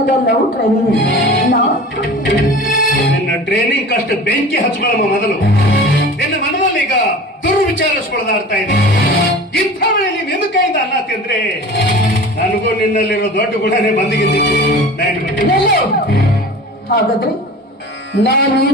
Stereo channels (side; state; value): both; normal; correlation 0.38